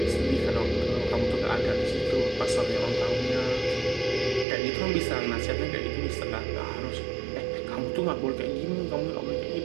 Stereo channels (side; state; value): left; drops out; at 4.5 s